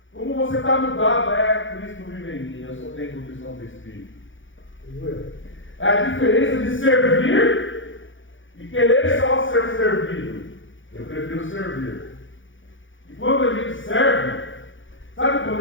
Como você está mudado? É, Cristo vive em mim, eu só tenho condição do Espírito. É a diferença de servir e querer só ser servido. Eu prefiro servir. E quando a gente serve, sabe quando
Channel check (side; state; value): right; late; 0.56 ms